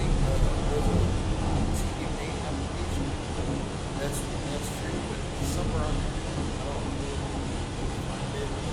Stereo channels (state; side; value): identical; both; correlation 1.00